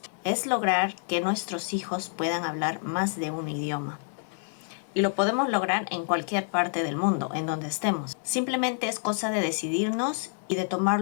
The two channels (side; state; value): right; silent; 56 dB below the other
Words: Es lograr que nuestros hijos puedan hablar más de un idioma. Y lo podemos lograr en cualquier parte del mundo, en donde estemos. Simplemente es cosa de decidirnos y de